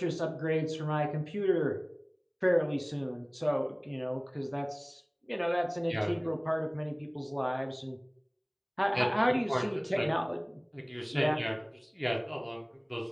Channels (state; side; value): identical; both; correlation 1.00